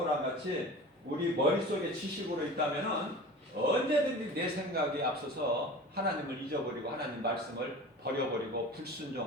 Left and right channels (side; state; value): both; normal; correlation 0.37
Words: 같이 우리 머릿속에 지식으로 있다면은 언제든지 내 생각에 앞서서 하나님을 잊어버리고 하나님 말씀을 버려버리고